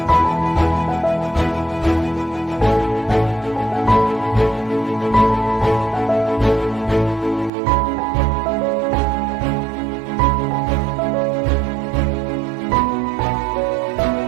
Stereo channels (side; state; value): left; drops out; at 7.5 s